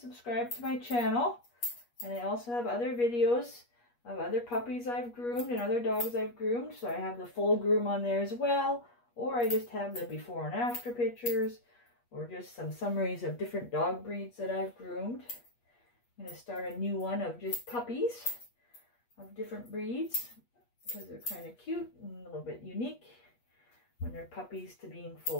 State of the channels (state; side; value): late; right; 8.4 ms